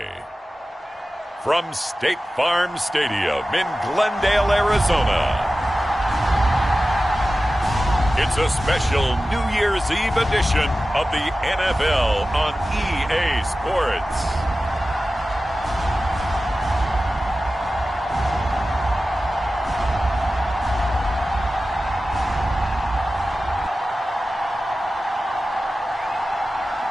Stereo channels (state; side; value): normal; both; correlation 0.95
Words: from State Farm Stadium in Glendale, Arizona, it's a special New Year's Eve edition of the NFL on EA Sports.